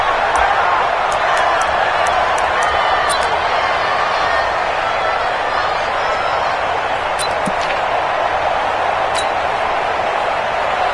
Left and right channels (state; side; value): identical; both; correlation 1.00